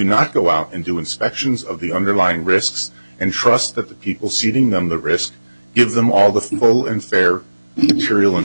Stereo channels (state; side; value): inverted; both; correlation -1.00